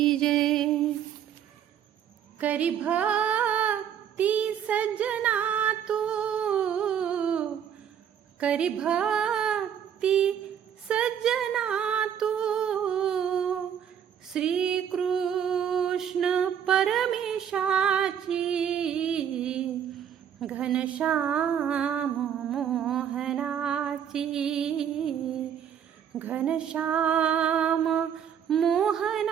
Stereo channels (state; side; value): quieter; left; 8.8 dB